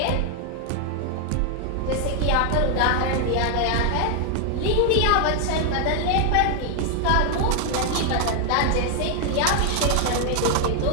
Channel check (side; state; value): both; different; correlation 0.00